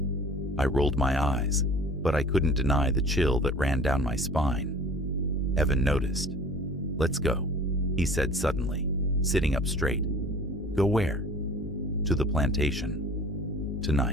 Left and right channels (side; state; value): both; normal; correlation 0.46